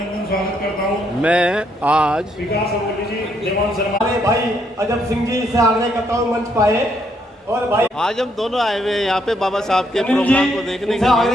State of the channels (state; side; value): normal; both; correlation 0.73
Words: मैं आज भाई अजब सिंह जी से आग्रह करता हूं मंच पाए। और भाई आज हम दोनों आए हुए हैं यहाँ पे बाबा साहब के प्रोग्राम को देखने के